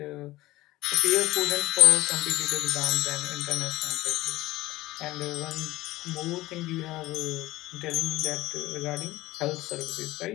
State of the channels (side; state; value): right; quieter; 17.8 dB